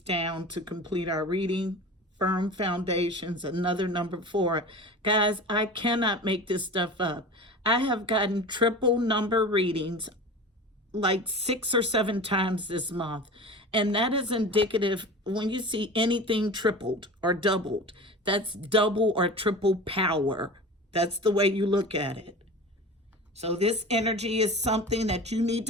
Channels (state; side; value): normal; both; correlation 0.34